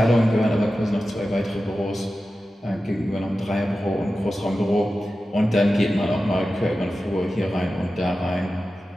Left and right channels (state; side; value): normal; both; correlation 0.93